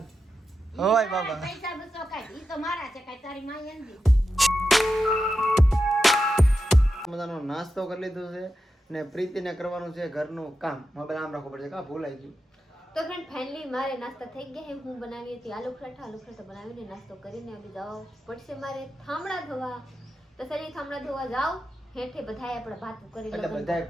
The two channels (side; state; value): both; normal; correlation 0.89